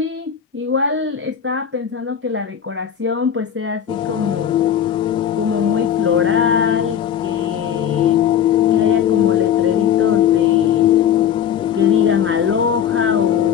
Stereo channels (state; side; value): quieter; right; 9.0 dB